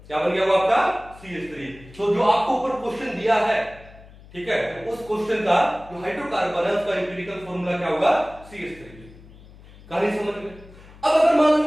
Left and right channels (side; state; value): left; noise; hum, 21 dB below the sound